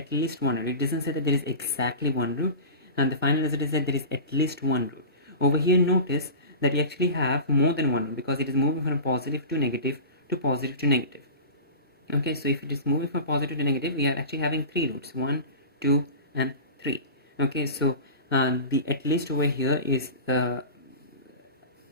least one root. It doesn't say that there is exactly one root, and the final result is that there is at least one root. Over here, notice that we actually have more than one root because it is moving from positive to negative to positive to negative. Okay, so if it is moving from positive to negative, we are actually having three roots: 1, 2, and 3. Okay, so the at least over here is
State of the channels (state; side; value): inverted; both; correlation -0.31